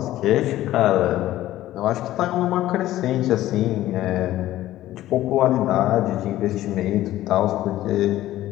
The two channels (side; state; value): right; quieter; 14.6 dB